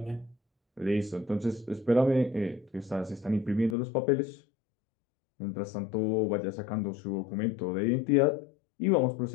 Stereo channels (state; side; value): drops out; right; at 3.8 s